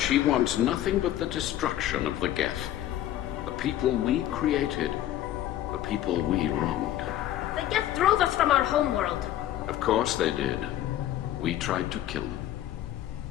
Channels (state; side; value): quieter; right; 12.7 dB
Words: wants nothing but the destruction of the Geth. The people we created. The people we wronged. The Geth drove us from our homeworld. Of course they did. We tried to kill them.